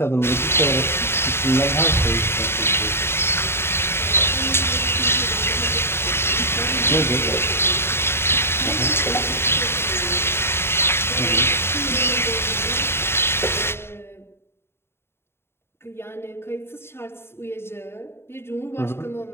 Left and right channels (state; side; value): late; right; 0.12 ms